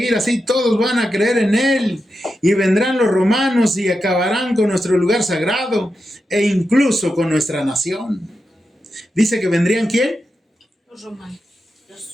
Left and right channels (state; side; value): normal; both; correlation 0.88